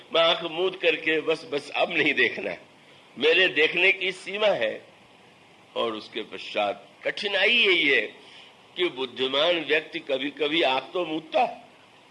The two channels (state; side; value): identical; both; correlation 1.00